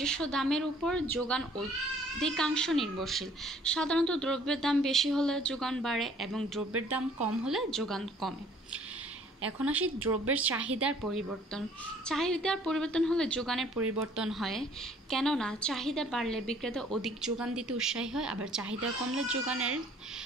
দামের উপর যোগান অধিকাংশ নির্ভরশীল। সাধারণত দ্রব্যের দাম বেশি হলে যোগান বাড়ে এবং দ্রব্যের দাম কম হলে যোগান কমে। এখন আসি দ্রব্যের চাহিদার পরিবর্তন। চাহিদার পরিবর্তন হলে যোগানের পরিবর্তন হয়, কেননা চাহিদা বাড়লে বিক্রেতা অধিক যোগান দিতে উৎসাহী হয়, আবার চাহিদা কমলে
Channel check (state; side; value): normal; both; correlation 0.57